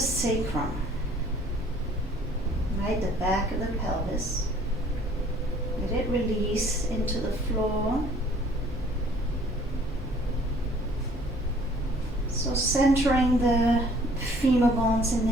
sacrum, right, the back of the pelvis. Let it release into the floor. So centering the femur bones in the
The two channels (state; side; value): normal; both; correlation 0.57